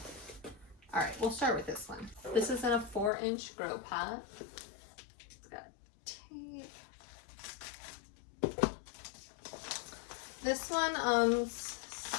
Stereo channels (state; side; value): drops out; right; at 3.1 s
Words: All right, we'll start with this one. This is in a 4-inch grow pot. It's got tape. This one,